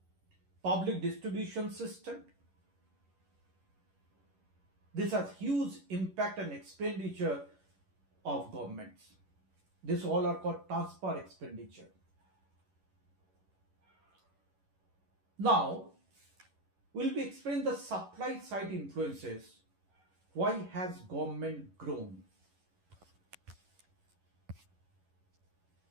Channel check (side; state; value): left; late; 11 ms